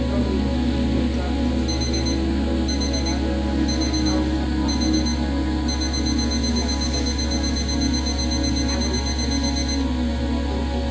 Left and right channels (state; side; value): identical; both; correlation 1.00